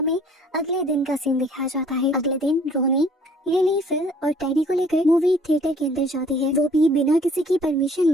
अगले दिन का सीन दिखाया जाता है। अगले दिन रोनी, लिली, फिल और टेडी को लेकर मूवी थिएटर के अंदर जाती है, वो भी बिना किसी की परमिशन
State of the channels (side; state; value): both; normal; correlation 0.56